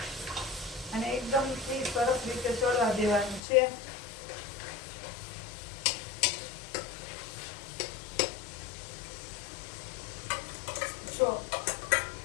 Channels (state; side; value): drops out; right; at 3.4 s